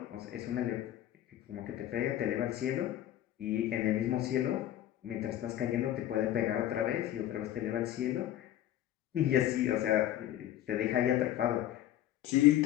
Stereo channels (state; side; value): quieter; right; 12.5 dB